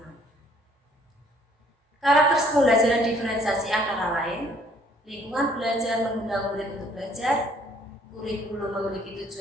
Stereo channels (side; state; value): both; normal; correlation 0.61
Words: Karakter pembelajaran diferensiasi antara lain, lingkungan belajar mengundang murid untuk belajar, kurikulum memiliki